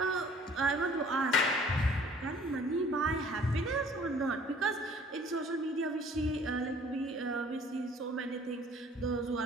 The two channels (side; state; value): both; normal; correlation 0.54